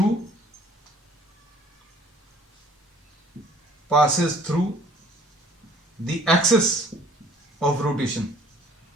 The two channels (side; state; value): both; normal; correlation 0.55